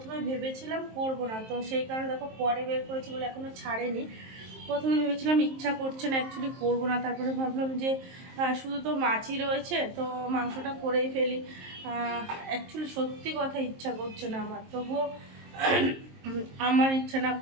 ভেবেছিলাম করবো না, তো সেই কারণে দেখো পরে বের করেছি বলে এখনও ছাড়েনি। প্রথমে ভেবেছিলাম ইচ্ছা করছে না, অ্যাকচুয়ালি করবো না, তারপরে ভাবলাম যে শুধু তো মাছই রয়েছে, তো মাংসটা করেই ফেলি। অ্যাকচুয়ালি সত্যি কথা ইচ্ছা করছে না আমার, তবুও আমার ইচ্ছা না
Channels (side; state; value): left; late; 23 ms